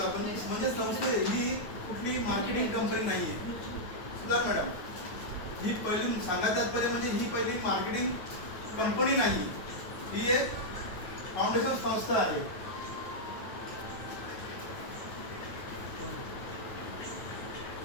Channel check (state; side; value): late; right; 9.3 ms